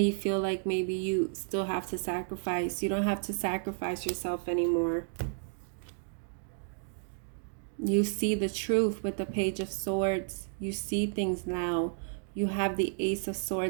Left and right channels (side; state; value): left; silent; digital silence